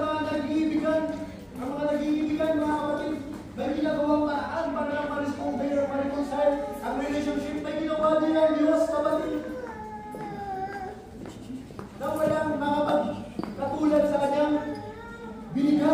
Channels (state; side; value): identical; both; correlation 1.00